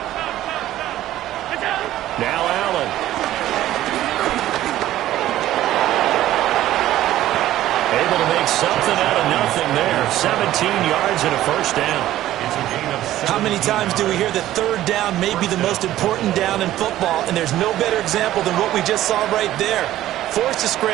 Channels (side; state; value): left; quieter; 13.9 dB